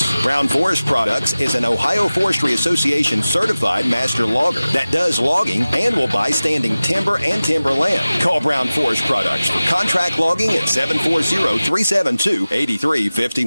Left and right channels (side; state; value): both; inverted; correlation -0.97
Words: Brown Forest Products is an Ohio Forestry Association certified master logger that does logging and will buy standing timber and timberland. Call Brown Forest Products for contract logging at 740-372-8351.